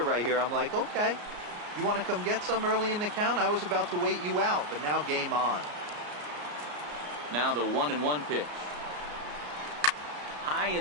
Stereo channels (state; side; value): late; left; 34 ms